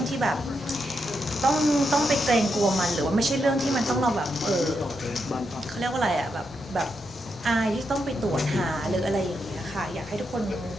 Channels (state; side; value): normal; both; correlation 0.83